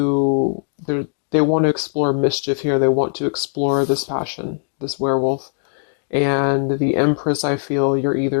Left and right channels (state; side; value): silent; right; digital silence